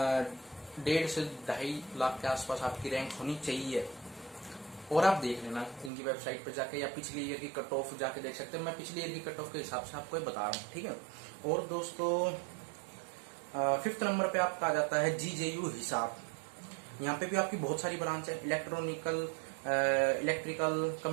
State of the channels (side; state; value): left; drops out; at 5.9 s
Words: से 2.5 लाख के आसपास आपकी रैंक होनी चाहिए। और आप देख लेना इनकी वेबसाइट पे जाके, या पिछली ईयर की कट ऑफ जाके देख सकते हैं। मैं पिछली ईयर की कट ऑफ के हिसाब से आपको बता रहा हूँ, ठीक है। और दोस्तों 5th नंबर पे आपका आ जाता है GJU हिसार। यहाँ पे भी आपकी बहुत सारी ब्रांच है, electronical, electrical,